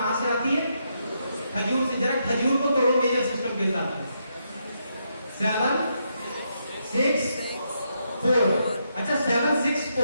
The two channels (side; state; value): both; inverted; correlation -0.79